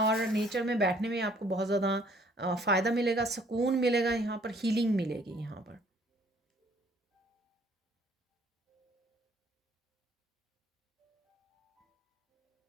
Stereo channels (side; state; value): both; normal; correlation 0.60